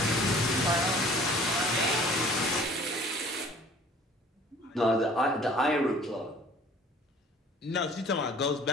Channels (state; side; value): normal; both; correlation 0.51